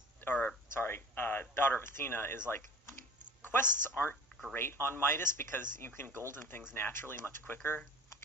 Daughter of Athena is, quests aren't great on Midas because you can golden things naturally much quicker.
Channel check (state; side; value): normal; both; correlation 0.42